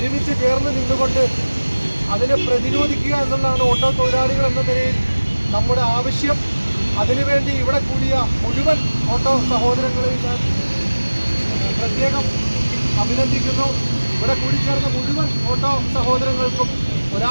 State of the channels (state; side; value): inverted; both; correlation -1.00